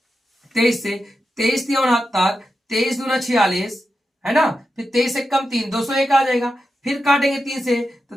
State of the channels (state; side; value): normal; both; correlation 0.89